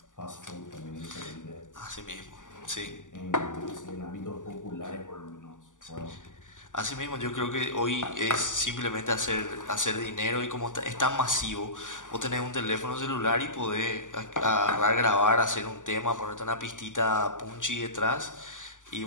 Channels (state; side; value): late; right; 0.87 ms